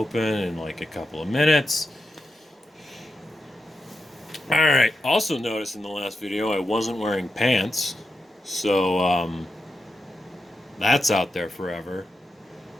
in like a couple of minutes. Alright, also noticed in the last video I wasn't wearing pants, so that's out there forever.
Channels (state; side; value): normal; both; correlation 0.88